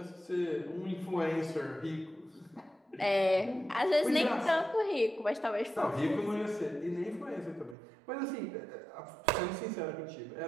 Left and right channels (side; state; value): left; drops out; at 7.8 s